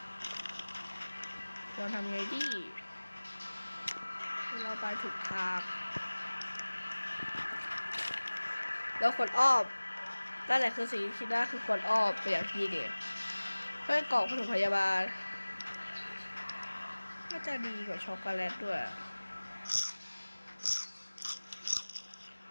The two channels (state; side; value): inverted; both; correlation -1.00